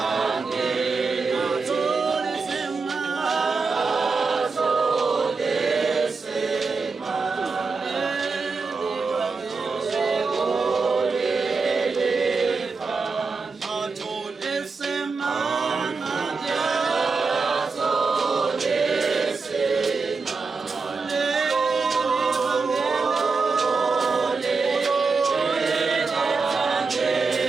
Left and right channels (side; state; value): left; quieter; 4.5 dB